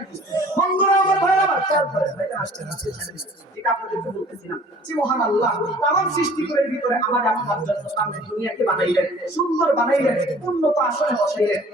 বন্ধুরা আমার, ভাইরা আমার, খেয়াল করেন, ভাইজান আসতে ঠিক আপনাদেরকে বলতেছিলাম যে মহান আল্লাহ তামাম সৃষ্টিগুলোর ভিতরে আমার আপনার জন্য সামনে দুনিয়াকে বানাইলেন, সুন্দর বানাইলেন, উন্নত আসনে বসাইলেন।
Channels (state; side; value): normal; both; correlation 0.50